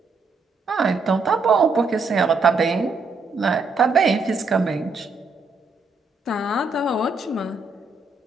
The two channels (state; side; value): quieter; left; 4.0 dB